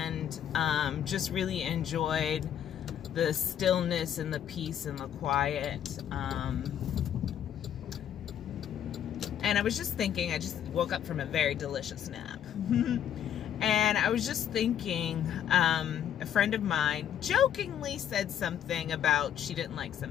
just really enjoyed the stillness and the peace and the quiet. And I was just thinking, I just woke up from a very delicious nap. And I was just thinking, a friend of mine jokingly said something about she didn't like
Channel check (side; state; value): right; quieter; 9.8 dB